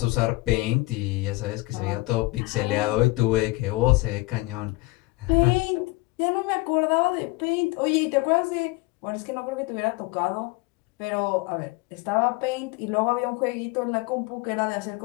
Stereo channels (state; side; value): quieter; right; 22.6 dB